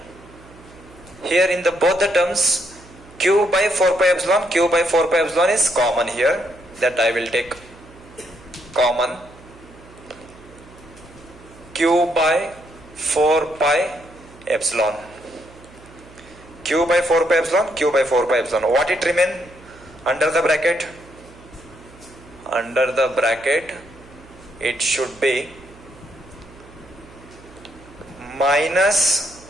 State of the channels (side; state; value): right; noise; hum, 22 dB below the sound